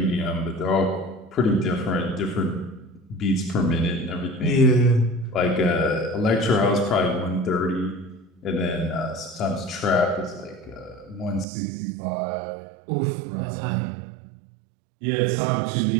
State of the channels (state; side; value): drops out; left; at 11.5 s